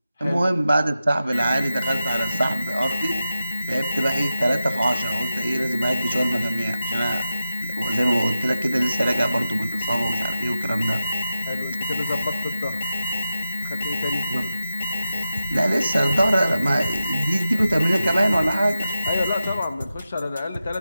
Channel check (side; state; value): both; inverted; correlation -0.91